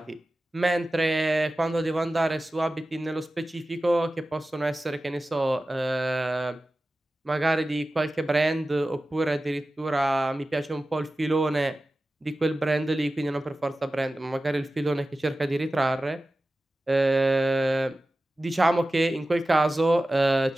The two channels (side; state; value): both; normal; correlation 0.95